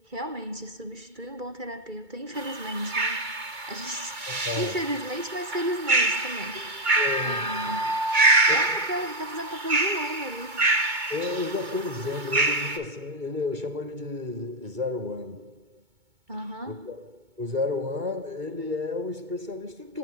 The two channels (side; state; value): left; late; 2.2 ms